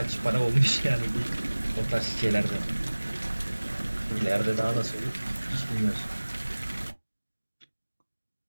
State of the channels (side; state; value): both; inverted; correlation -1.00